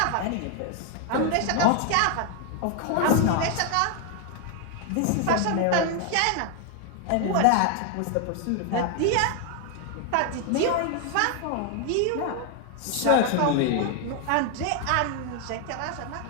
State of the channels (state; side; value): different; both; correlation 0.01